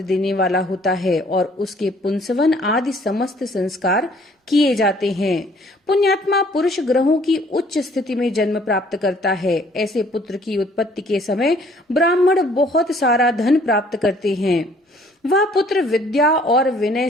देने वाला होता है और उसके पुंसवन आदि समस्त संस्कार किए जाते हैं। पुण्यात्मा पुरुष ग्रहों की उच्च स्थिति में जन्म प्राप्त करता है। ऐसे पुत्र की उत्पत्ति के समय ब्राह्मण बहुत सारा धन प्राप्त करते हैं। वह पुत्र विद्या और विनय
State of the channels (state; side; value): normal; both; correlation 0.59